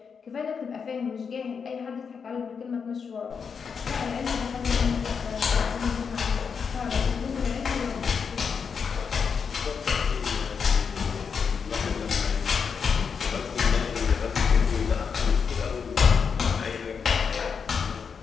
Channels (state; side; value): quieter; right; 6.1 dB